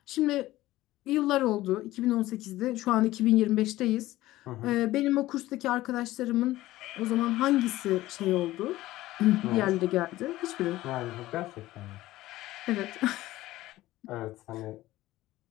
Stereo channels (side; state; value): right; quieter; 16.5 dB